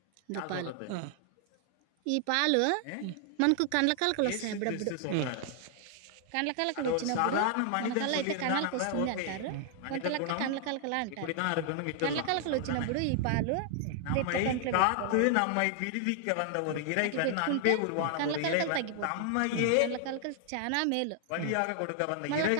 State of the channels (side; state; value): both; different; correlation 0.00